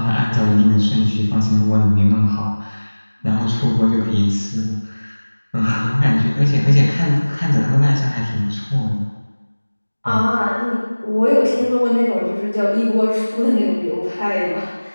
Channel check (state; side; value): inverted; both; correlation -1.00